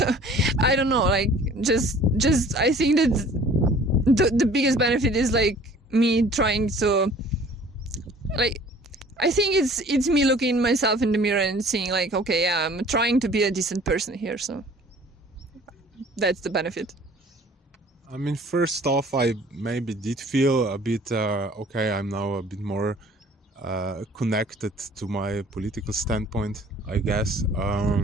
I don't know, like just I think that the biggest benefit is like me trying to, like, I think it's me looking myself in the mirror and seeing like, okay, yeah, I'm trying to be a decent person here, so that's the benefit. I mean, first off, I maybe did feel a bit, okay, I'm now a bit more connected to my political standpoint, I guess.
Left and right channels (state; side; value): normal; both; correlation 0.51